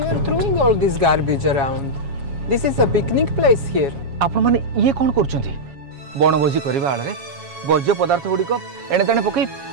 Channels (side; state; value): left; late; 7.2 ms